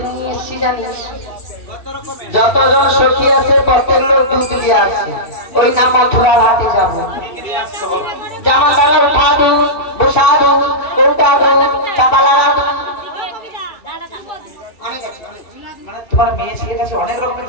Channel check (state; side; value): late; right; 2.7 ms